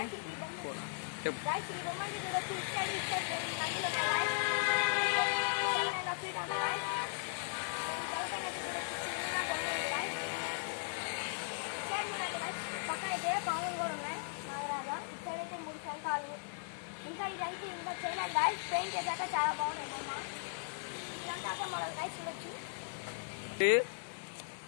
ఈ బొమ్మలు చూడొచ్చు. నదిలో పక్కన అయితే పాములు కూడా ఉన్నాయి నాగరాజా. ఇక్కడ అయితే 3 శంఖాలు. ఇంకా ఇదైతే ఇంకా చేయలేదు గాయ్స్. పెయింట్ చేశాక చాలా బాగున్నాయి బొమ్మ. ఇదంతా మరో గాయ్స్ చూడొచ్చు.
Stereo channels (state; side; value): silent; right; digital silence